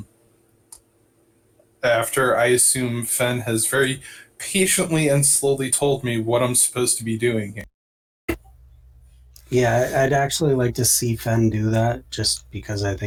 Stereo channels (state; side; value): identical; both; correlation 1.00